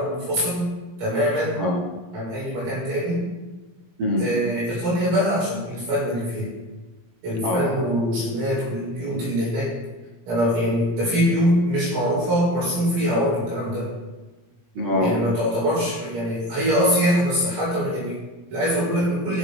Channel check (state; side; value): late; left; 17 ms